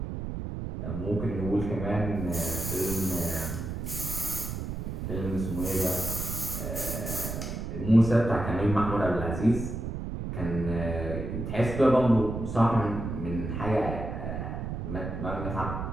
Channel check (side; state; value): right; noise; rumble, 5 dB below the sound